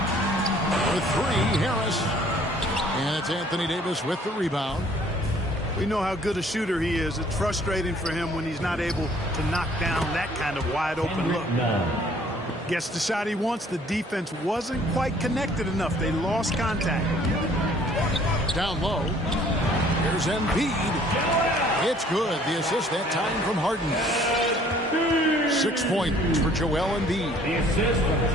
With 3, Harris. And it's Anthony Davis with the rebound. We know how good a shooter he is. It's frustrating for him when he's not able to knock down that kind of wide open look. Gets the shot he wants. The defense wasn't quite connected enough. They lost contact. Down low. Here's Embiid. It's good. The assist that time from Harden. 6 points for Joel Embiid.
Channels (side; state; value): both; normal; correlation 0.57